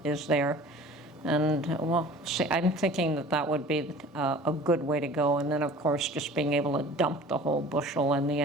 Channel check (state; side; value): normal; both; correlation 0.44